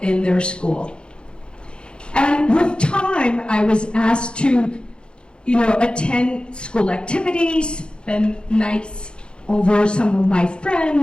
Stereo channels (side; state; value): right; late; 0.053 ms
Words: their school. And with time, I was asked to, attend school activities, spend nights over some of my